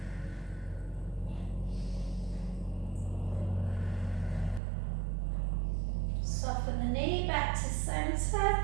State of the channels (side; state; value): left; drops out; at 4.6 s